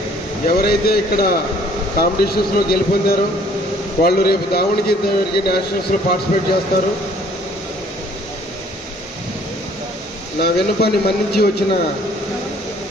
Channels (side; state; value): both; normal; correlation 0.58